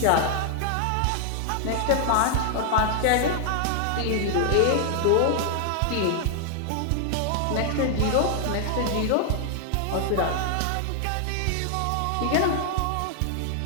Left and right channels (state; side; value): different; both; correlation 0.00